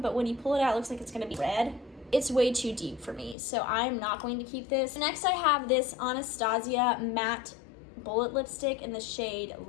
when you pull it out, it looks like it's going to be red. It's way too deep for me, so I'm not going to keep this. Next, I have this Anastasia matte bullet lipstick in the shade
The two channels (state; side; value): drops out; right; at 3.4 s